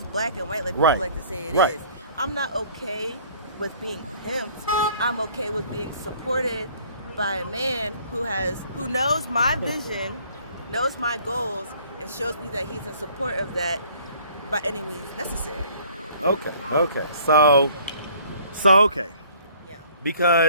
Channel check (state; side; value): inverted; both; correlation -0.56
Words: black and white like people like to say it is. I'm not okay with being pimped. I'm okay with being supported by a man who knows my vision, knows my goals, and shows me that he's in support of that by any means necessary. Okay. So okay. Yeah.